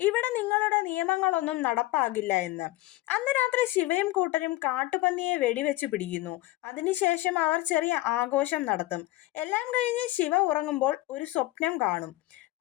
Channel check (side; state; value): right; quieter; 17.9 dB